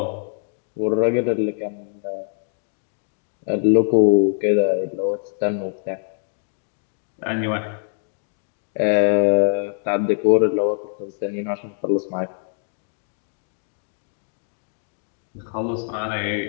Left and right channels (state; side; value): silent; right; digital silence